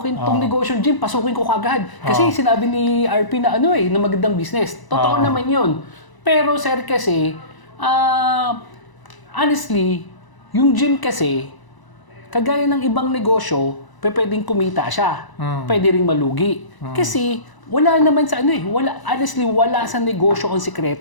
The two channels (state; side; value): late; right; 1.0 ms